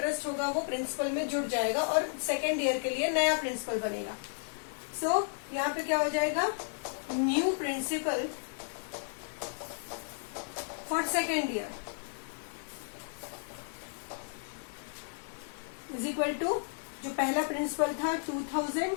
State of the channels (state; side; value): silent; right; digital silence